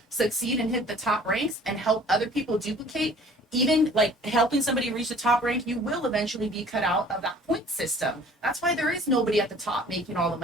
succeed and hit the top ranks and help other people duplicate. Even like helping somebody reach the top rank, you will eventually be cut out of that point system. That's why there is nobody at the top making all the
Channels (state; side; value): normal; both; correlation 0.50